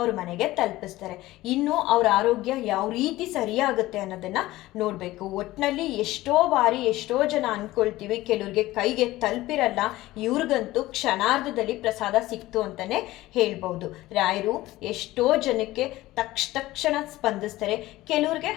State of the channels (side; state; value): right; quieter; 17.3 dB